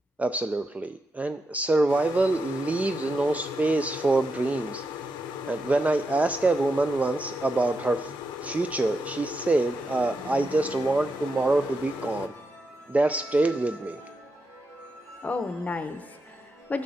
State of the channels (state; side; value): normal; both; correlation 0.85